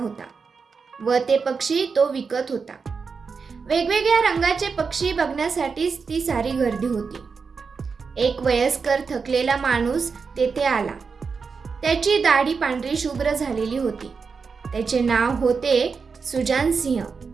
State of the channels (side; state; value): left; quieter; 5.3 dB